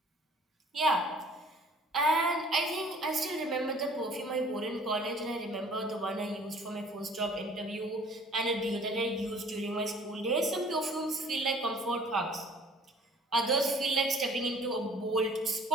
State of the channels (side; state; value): both; normal; correlation 0.53